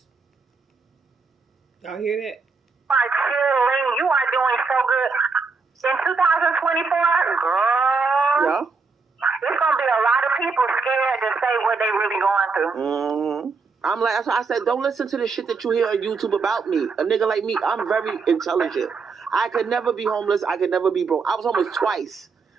Y'all hear that? You are doing so good. In 2024, girl. Yeah. There's going to be a lot of people scared to say what they really going through. Mm-hmm. That's why I said, don't listen to the shit that you hear on YouTube about me. A nigga like me, I'm very intelligent. I could never be homeless. I could never be broke. I was homeless twice,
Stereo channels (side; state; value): left; quieter; 4.6 dB